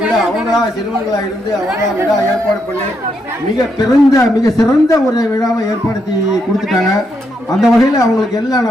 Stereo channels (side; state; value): both; normal; correlation 0.79